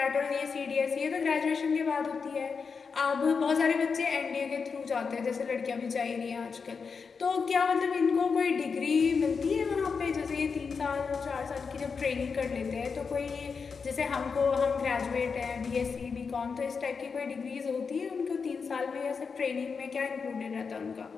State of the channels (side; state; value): right; quieter; 5.4 dB